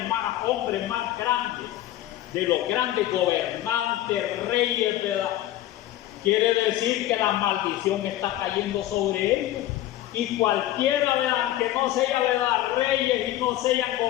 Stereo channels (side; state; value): right; quieter; 14.0 dB